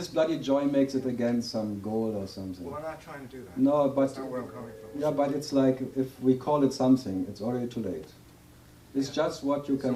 bloody joy makes it again some goal or something. Well, I'm not trying to do that. No, but That's not where I'm coming from. yeah, but it's like if we call it something, it's already too late. It's just what you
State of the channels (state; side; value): identical; both; correlation 1.00